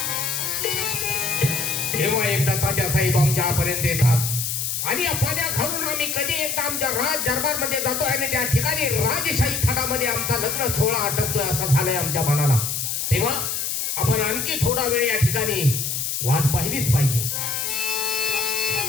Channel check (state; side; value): noise; left; hiss, 2 dB below the sound